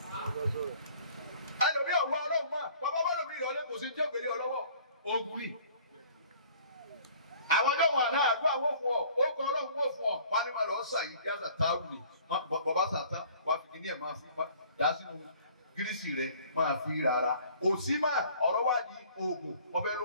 ẹlòmí ọ̀wọ́ ọlọ́run máa bàbá bá lòmí ìrọ̀lẹ́ kò sí tí òkèlè ọlọ́wọ́ ogun ni àwọn ọjọ́ wọn àná àdúrà wọ́n fún ọ ó kọ ọlọ́run wọ́n fún ọ wọn ni máa lọ sà yìí kí á sà táwù ni bàbá sàtá wà fi kí ní ẹ̀ máa fi dá sínú gírísì rẹ máa fi rárá òsì máa ọ̀rọ̀ wá di oògùn wọ́n fẹ́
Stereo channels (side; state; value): both; inverted; correlation -0.53